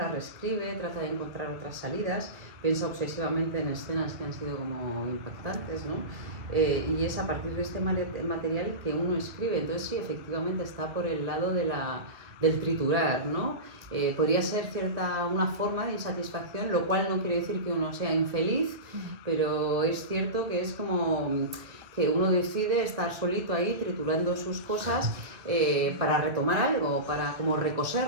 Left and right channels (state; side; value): late; left; 2.3 ms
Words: reescribe, trata de encontrar otras salidas, piensa obsesivamente en escenas que han sido como impactantes, ¿no? Y es a partir de este material que uno escribe. Entonces sí, efectivamente está por el lado de del triturar, ¿no? Podría ser una forma de insatisfacción, lo cual no quiere decir que uno sea infeliz, pero es cierto que es como que uno decide estar solito ahí triturando sus cosas para retomar algo, para como